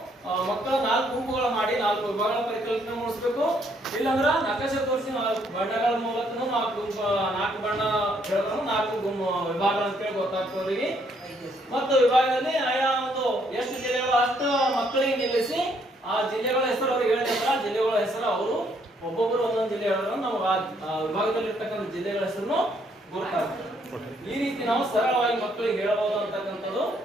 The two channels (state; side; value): normal; both; correlation 0.69